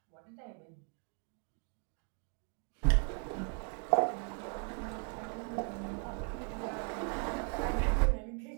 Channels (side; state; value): left; quieter; 38.6 dB